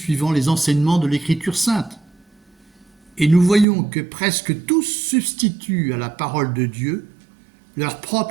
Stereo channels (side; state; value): left; drops out; at 3.7 s